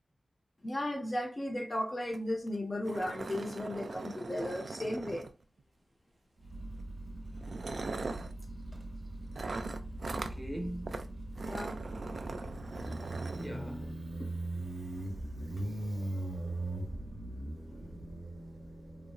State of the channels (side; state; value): both; normal; correlation 0.93